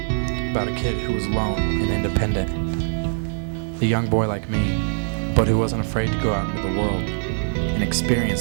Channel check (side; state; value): left; silent; 56 dB below the other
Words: about a kid who was alone and independent. A young boy like me, but who wasn't afraid to go out into the world and